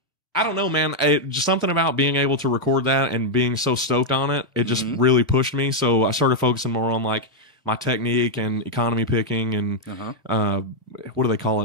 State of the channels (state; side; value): normal; both; correlation -0.01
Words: I don't know, man. Just something about being able to record that and being so stoked on it, it just really pushed me. So I started focusing more on like my technique and economy picking and what do they call